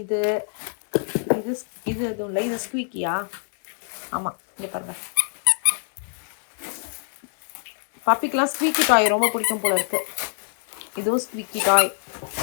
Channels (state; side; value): silent; right; digital silence